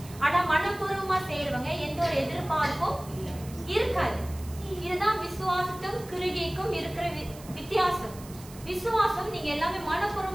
ஆனா மனப்பூர்வமா செய்யறவங்க எந்த ஒரு எதிர்பார்ப்பும் இருக்காது. இதுதான் விசுவாசத்தும் கிருகைக்கும் இருக்கிற வித்தியாசம். விசுவாசம் நீங்க எல்லாமே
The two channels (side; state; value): right; noise; hiss, 19 dB below the sound